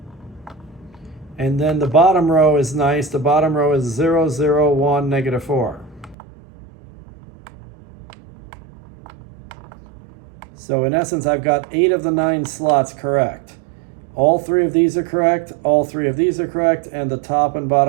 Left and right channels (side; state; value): left; drops out; at 6.2 s